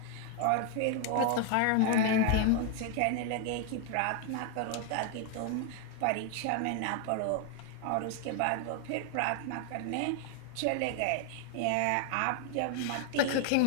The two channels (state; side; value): different; both; correlation 0.00